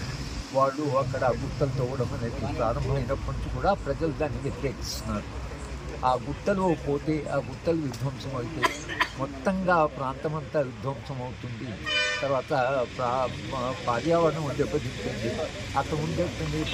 వాళ్ళు అక్కడ గుట్టలు తవ్వడం అనేది ప్రారంభమైనప్పటి నుంచి కూడా ప్రజలు దాన్ని వ్యతిరేకిస్తున్నారు. ఆ గుట్టలు పోతే, ఆ గుట్టలు విధ్వంసం అయితే మొత్తంగా ప్రాంతం అంతా విధ్వంసం అవుతుంది. తర్వాత పర్యావరణం దెబ్బతింటుంది. అక్కడ ఉండేటువంటి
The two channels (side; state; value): both; identical; correlation 1.00